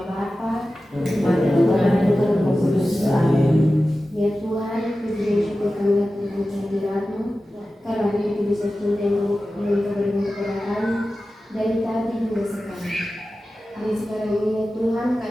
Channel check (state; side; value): normal; both; correlation 0.94